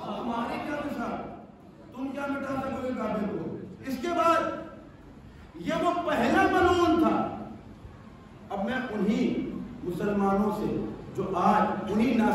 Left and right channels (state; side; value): identical; both; correlation 1.00